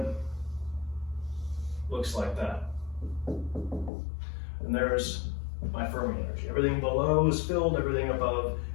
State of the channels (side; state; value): right; drops out; at 3.9 s